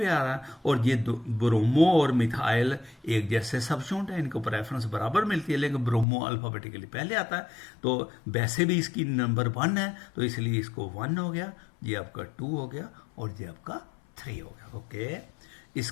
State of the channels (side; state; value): right; drops out; at 6.1 s